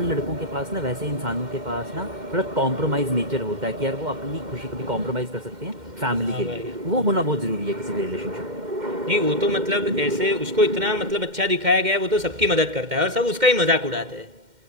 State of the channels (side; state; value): left; late; 2.1 ms